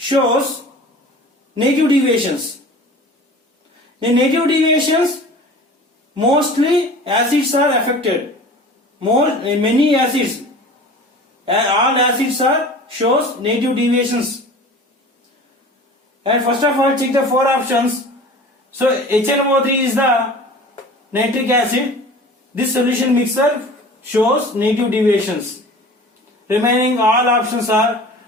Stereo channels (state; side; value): normal; both; correlation 0.41